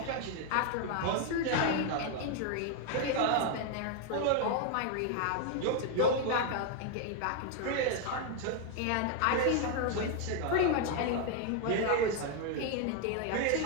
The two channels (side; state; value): both; different; correlation 0.00